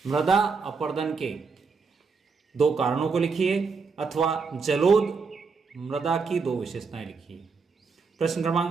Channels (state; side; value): quieter; left; 4.9 dB